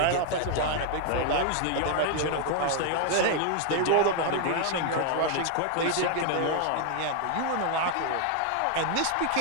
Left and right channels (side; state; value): both; different; correlation 0.00